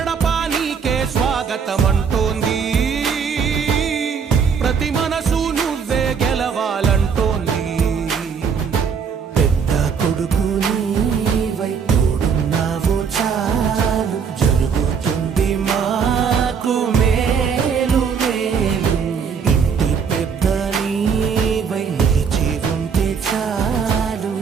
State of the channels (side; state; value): left; quieter; 6.4 dB